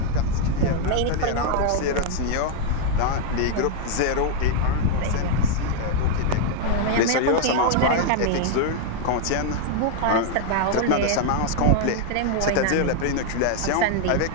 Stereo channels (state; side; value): different; both; correlation 0.00